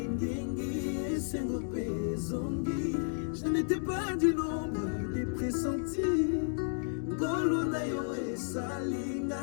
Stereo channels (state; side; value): silent; right; digital silence